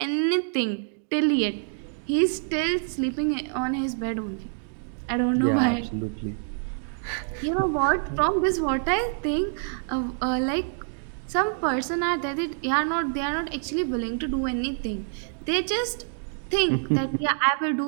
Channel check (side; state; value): left; silent; digital silence